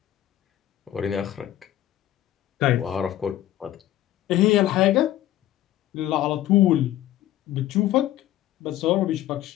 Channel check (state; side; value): quieter; right; 13.4 dB